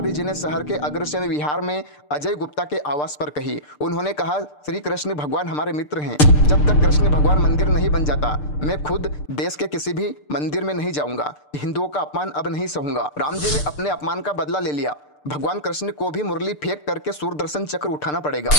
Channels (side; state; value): right; late; 6.7 ms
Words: जी ने शहर के अग्रसेन विहार में अजय गुप्ता के आवास पर कही। उन्होंने कहा, श्री कृष्ण भगवान हमारे मित्र हैं। जब तक कृष्ण भगवान मंदिर नहीं बन जाता मैं खुद देश के किसी भी मंदिर में नहीं जाऊंगा। हिंदुओं का अपमान अब नहीं सहूंगा। राम जी ने अपने अपमान का बदला ले लिया। भगवान कृष्ण को भी मुरली फेंक करके सूरदर्शन चक्र उठाना पड़ेगा।